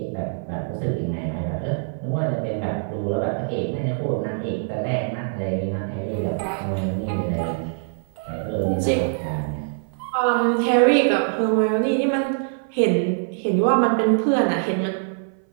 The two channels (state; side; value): silent; left; 58 dB below the other